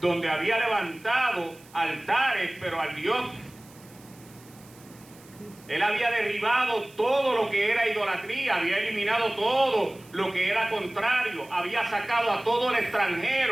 había levantado altares, pero al Dios. Él había derribado todo lo que era idolatría, había eliminado todo lo que era contrario, había sacado a todo el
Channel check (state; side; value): noise; right; hiss, 25 dB below the sound